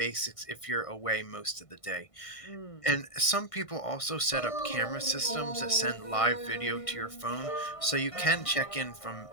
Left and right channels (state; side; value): late; right; 1.5 ms